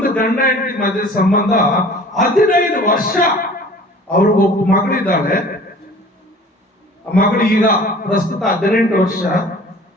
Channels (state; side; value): normal; both; correlation 0.46